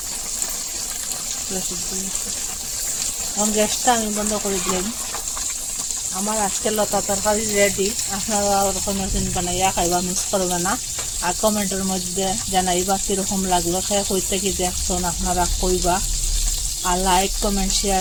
পুরা সিদ্ধ হয়ে গেছে। এখন গ্যাসটা আমি বন্ধ করে দিলাম। আমার আজকে লতা তরকারি রেডি। আপনারা ওরকম বানাইয়া খাইবা, মিস করবে না। আর কমেন্টের মধ্যে জানাইবা কীরকম লাগলো, খেয়ে কই থেকে দেখছেন আপনারা কইবা। আর লাইক কমেন্ট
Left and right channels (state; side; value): identical; both; correlation 1.00